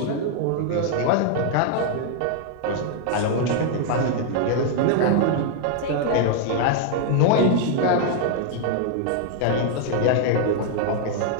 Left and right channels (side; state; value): both; different; correlation 0.00